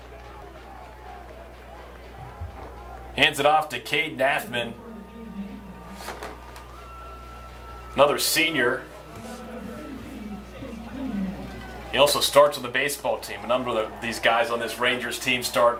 Hands it off to Cade Naffman. Another senior. He also starts on the baseball team. A number of these guys on this Rangers team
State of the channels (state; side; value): identical; both; correlation 1.00